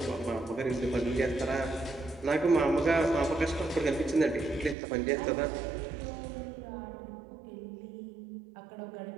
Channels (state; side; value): drops out; left; at 4.8 s